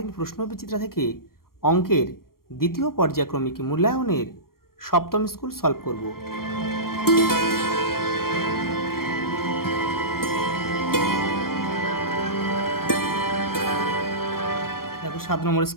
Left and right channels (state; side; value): late; right; 0.93 ms